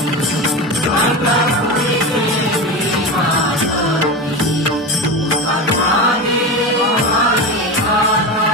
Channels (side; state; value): both; normal; correlation 0.23